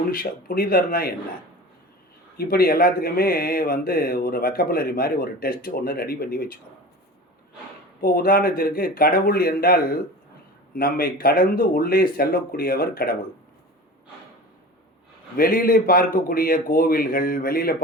புனிதர்னா என்ன, இப்படி எல்லாத்துக்குமே ஒரு வக்கபுலரி மாதிரி ஒரு டெஸ்ட் ஒன்று ரெடி பண்ணி வச்சுக்கணும். இப்போது உதாரணத்திற்கு கடவுள் என்றால் நம்மை கடந்து உள்ளே செல்லக்கூடியவர் கடவுள். வெளியிலே பார்க்கக்கூடிய கோவில்கள், வெளியில்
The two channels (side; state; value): both; normal; correlation 0.35